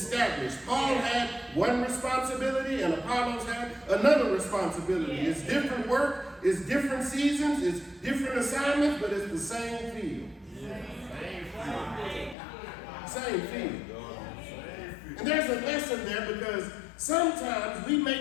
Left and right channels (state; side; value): drops out; right; at 12.4 s